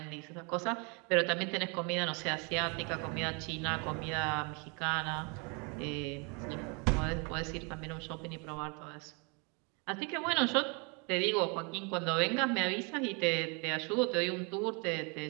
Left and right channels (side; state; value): left; quieter; 33.1 dB